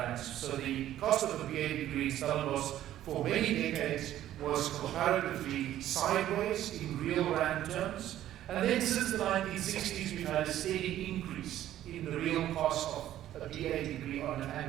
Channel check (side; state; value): left; quieter; 12.7 dB